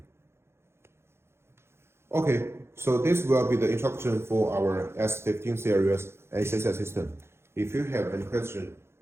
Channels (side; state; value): left; late; 0.12 ms